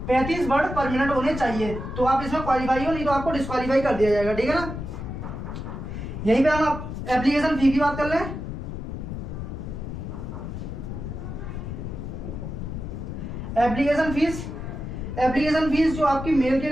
35 वर्ड पर मिनट होने चाहिए, तो आप इसमें क्वालिफाई हो, नहीं तो आपको डिस्क्वालीफाई कर दिया जाएगा, ठीक है ना। यहीं पे हम एप्लीकेशन फी की बात कर लें। एप्लीकेशन फीस जो आपकी मेल के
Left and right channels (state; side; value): noise; left; rumble, 6 dB below the sound